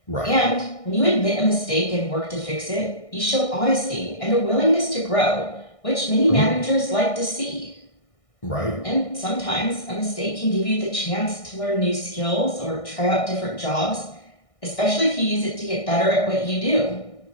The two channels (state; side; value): late; right; 1.6 ms